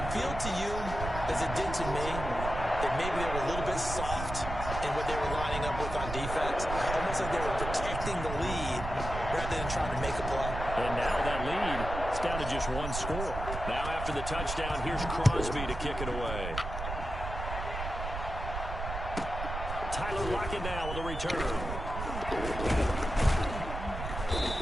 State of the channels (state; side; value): noise; right; rumble, 6 dB below the sound